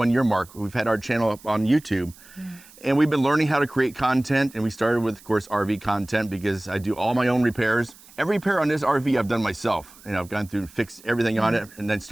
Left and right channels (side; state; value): right; noise; hiss, 23 dB below the sound